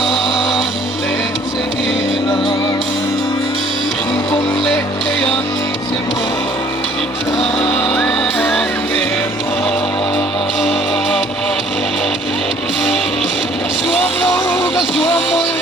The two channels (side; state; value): both; normal; correlation 0.57